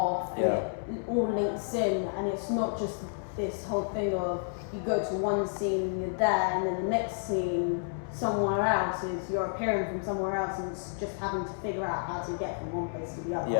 and Yeah. it all links in, and it's not just this whole thing of you go to one scene, you're there, and then the next scene somewhere else is you're appearing from somewhere else, and it's just having to figure out how to get from one place to the other.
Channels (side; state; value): right; silent; 57 dB below the other